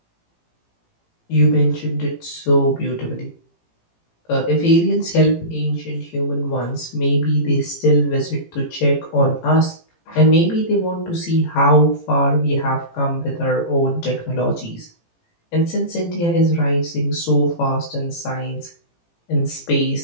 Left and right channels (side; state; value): right; late; 18 ms